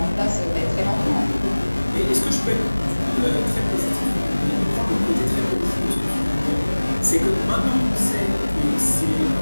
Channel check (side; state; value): both; inverted; correlation -1.00